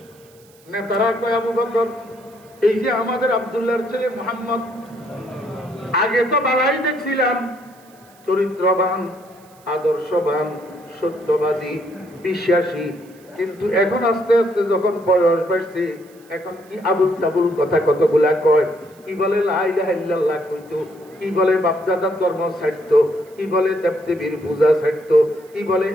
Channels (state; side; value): noise; right; hiss, 29 dB below the sound